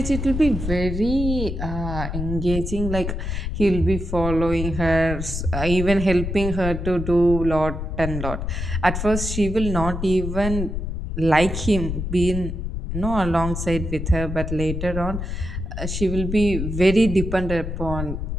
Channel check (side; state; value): left; noise; rumble, 4 dB below the sound